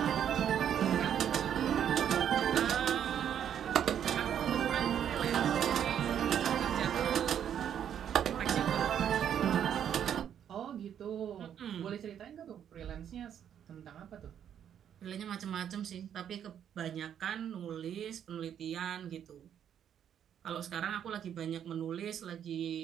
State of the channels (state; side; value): quieter; left; 9.3 dB